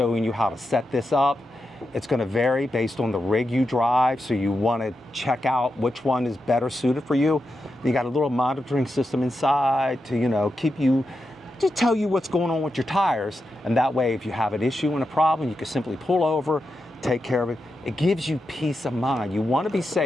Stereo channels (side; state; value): both; normal; correlation 0.88